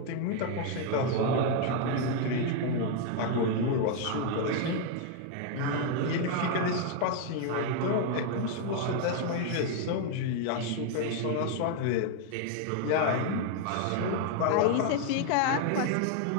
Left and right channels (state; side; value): different; both; correlation 0.01